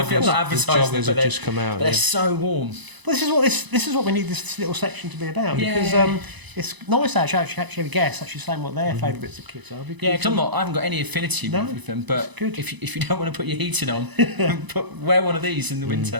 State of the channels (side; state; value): left; late; 1.0 ms